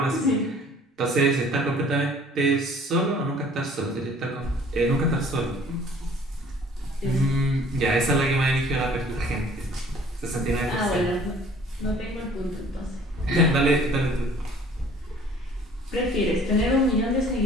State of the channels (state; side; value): normal; both; correlation 0.53